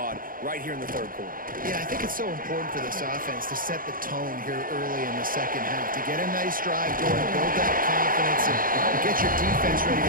right here in the 3rd quarter. Yeah, I think it's so important for this offense to set the tone here early in the second half, to get a nice drive going, build that confidence, and get your defense ready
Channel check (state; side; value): late; left; 0.41 ms